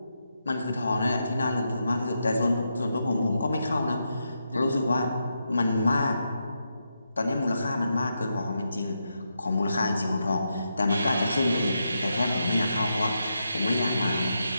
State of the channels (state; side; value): inverted; both; correlation -0.84